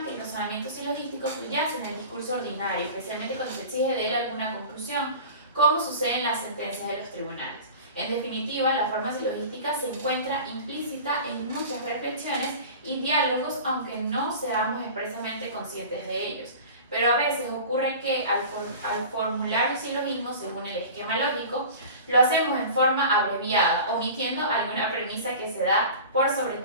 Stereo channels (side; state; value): both; inverted; correlation -0.37